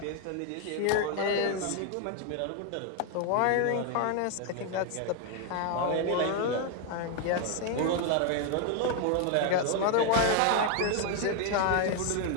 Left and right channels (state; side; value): different; both; correlation 0.01